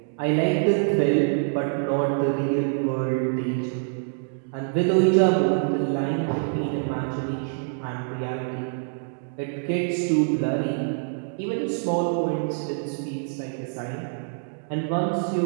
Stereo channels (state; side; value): silent; left; digital silence